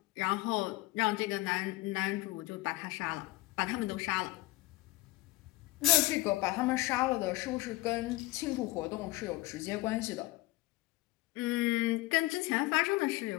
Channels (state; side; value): quieter; right; 18.7 dB